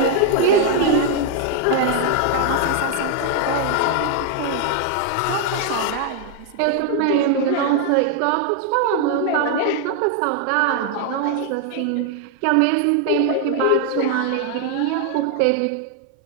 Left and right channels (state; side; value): different; both; correlation 0.00